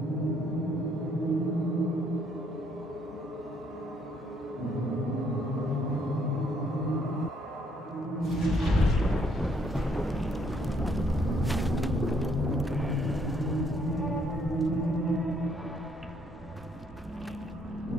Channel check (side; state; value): both; normal; correlation 0.68